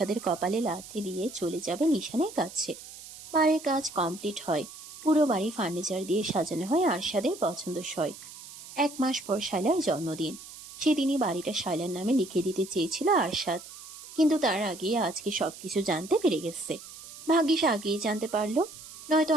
কপালে লাথি দিয়ে চলে যাবে নিশানের কাছে। বাড়ির কাজ কমপ্লিট হয়। পুরো বাড়ি ফার্নিচার দিয়ে সাজানো হয় আরশাদের পছন্দসই। 1 মাস পর শায়লার জন্মদিন। সেদিনই বাড়িটা শায়লার নামে লিখে দিতে চেয়েছিল আরশাদ, কিন্তু তার আগে আজকে সবকিছু জানতে পেরে গেছে। ভাগ্যিস আগেই জানতে পারলো, নয়তো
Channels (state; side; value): noise; right; hiss, 15 dB below the sound